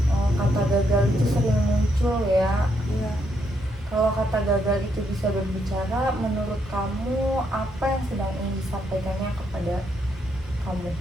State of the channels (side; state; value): both; normal; correlation 0.76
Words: Kata gagal itu sering muncul ya. Iya. Kalau kata gagal itu bisa berbicara, menurut kamu apa yang sedang ingin disampaikannya kepada kamu?